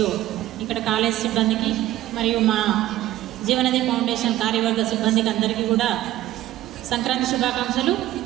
ఇక్కడ కాలేజ్ సిబ్బందికి మరియు మా జీవనది ఫౌండేషన్ కార్యవర్గ సిబ్బందికి అందరికీ కూడా సంక్రాంతి శుభాకాంక్షలు.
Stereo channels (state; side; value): quieter; left; 14.7 dB